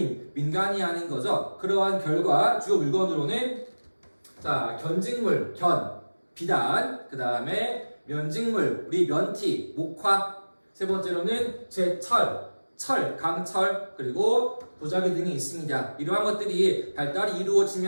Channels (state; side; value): inverted; both; correlation -1.00